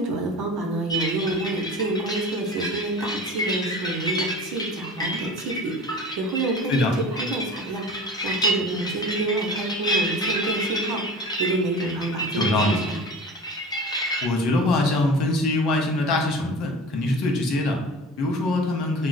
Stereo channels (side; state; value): both; normal; correlation 0.37